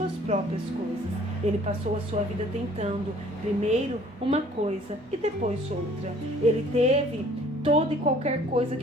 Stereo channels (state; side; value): normal; both; correlation 0.55